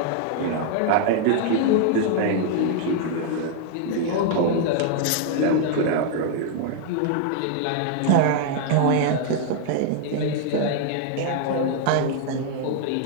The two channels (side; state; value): both; different; correlation 0.00